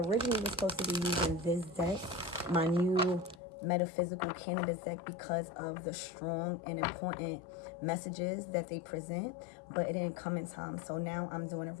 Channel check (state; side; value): drops out; right; at 3.4 s